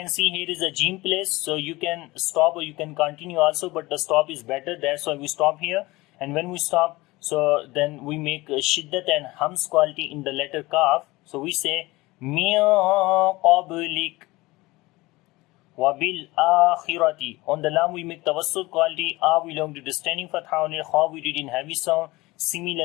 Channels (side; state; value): right; quieter; 20.8 dB